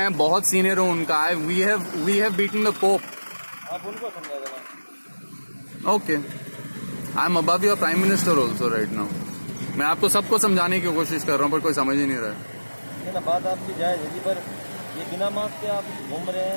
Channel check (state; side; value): inverted; both; correlation -1.00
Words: बहुत सीनियर हूँ उनका, we have beaten the pope. आप उनको समझा देना। Okay, I am above your prime minister also right now. मैं आपको सबको समझाने की कोशिश कर रहा हूँ, पर कोई समझ ही नहीं रहा है। नहीं ना, बात आपकी जायज है जी, पर ये बिना मास्क के आप घूम रहे